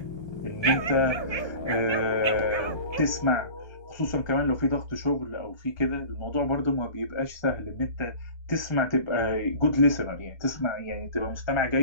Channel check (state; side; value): late; right; 1.2 ms